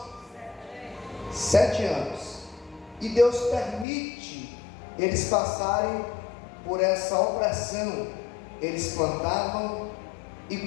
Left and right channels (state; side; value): drops out; right; at 3.9 s